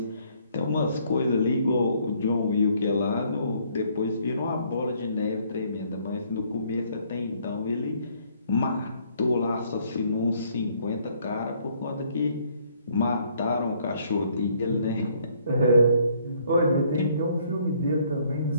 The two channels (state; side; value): inverted; both; correlation -0.65